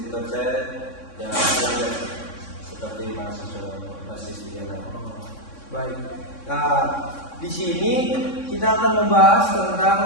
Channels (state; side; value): late; right; 3.6 ms